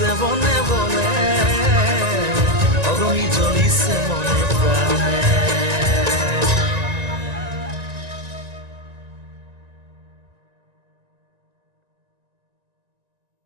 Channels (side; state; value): left; late; 1.9 ms